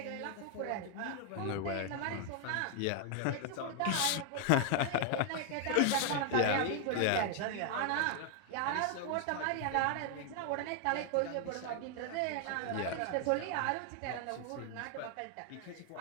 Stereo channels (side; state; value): both; different; correlation 0.00